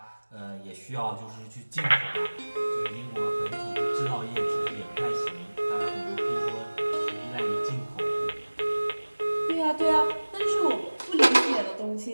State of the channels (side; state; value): both; inverted; correlation -1.00